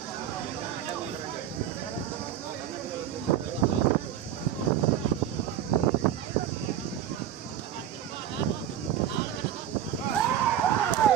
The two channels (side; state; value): left; quieter; 10.6 dB